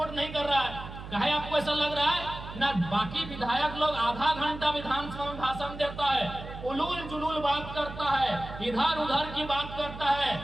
नहीं कर रहा है। कहे आपको ऐसा लग रहा है ना, बाकी विधायक लोग आधा घंटा विधानसभा में भाषण देता है, उलूल जुलूल बात करता है, इधर उधर की बात करता है,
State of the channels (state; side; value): noise; right; hum, 11 dB below the sound